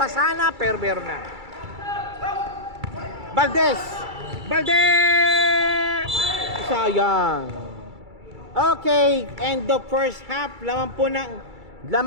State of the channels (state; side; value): late; left; 2.3 ms